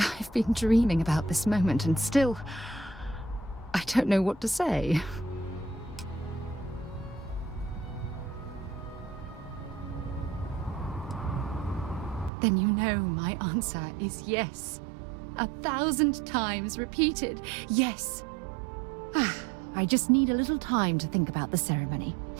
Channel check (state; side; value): drops out; left; at 12.3 s